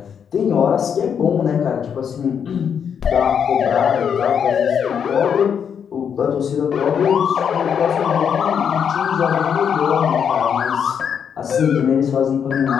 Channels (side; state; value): right; quieter; 7.6 dB